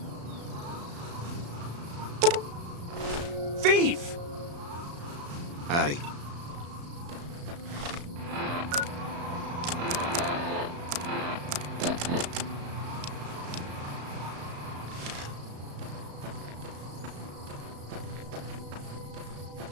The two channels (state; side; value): late; left; 35 ms